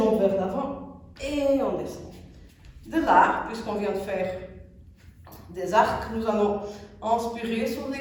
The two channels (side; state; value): both; identical; correlation 1.00